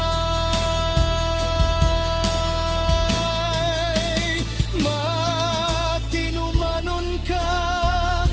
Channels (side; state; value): both; identical; correlation 1.00